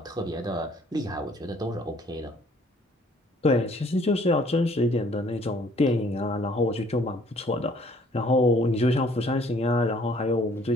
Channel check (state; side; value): normal; both; correlation 0.59